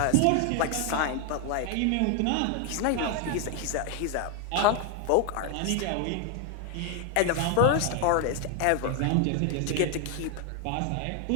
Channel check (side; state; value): both; different; correlation 0.01